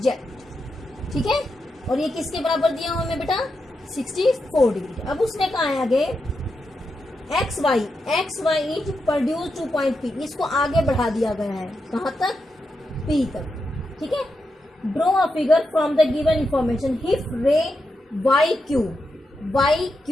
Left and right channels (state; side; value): normal; both; correlation 0.86